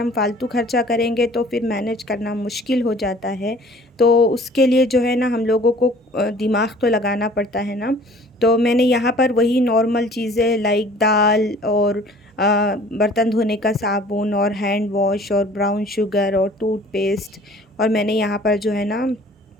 फालतू खर्चा करेंगे तो फिर मैनेज करना मुश्किल हो जाता है। तो उसके लिए जो है ना हम लोगों को दिमाग तो लगाना पड़ता है ना। तो मैंने यहाँ पर वही नॉर्मल चीज़ें लाइक दाल और बर्तन धोने का साबुन और हैंड वॉश और ब्राउन शुगर और टूथपेस्ट, और मैंने यहाँ पर जो है ना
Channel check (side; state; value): both; normal; correlation 0.50